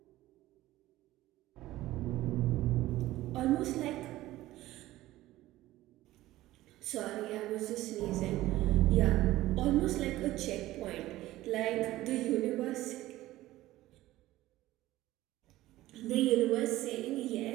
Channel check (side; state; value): left; quieter; 16.2 dB